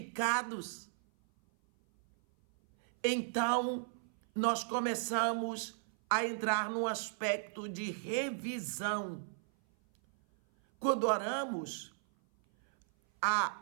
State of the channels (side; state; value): left; silent; 54 dB below the other